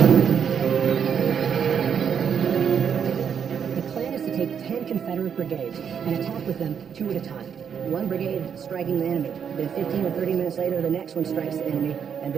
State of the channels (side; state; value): left; quieter; 7.5 dB